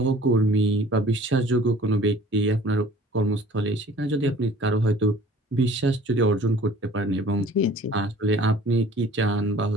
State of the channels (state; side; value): normal; both; correlation 0.50